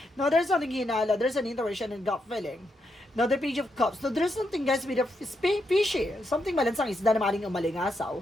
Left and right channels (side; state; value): both; normal; correlation 0.82